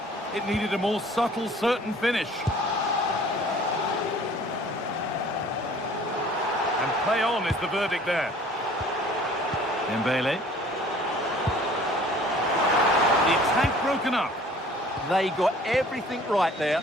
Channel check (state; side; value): normal; both; correlation 0.51